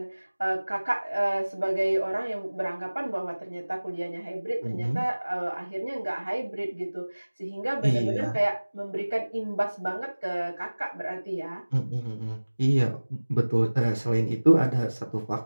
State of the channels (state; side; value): inverted; both; correlation -1.00